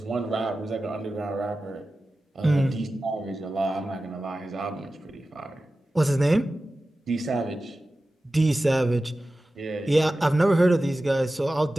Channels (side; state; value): both; normal; correlation 0.95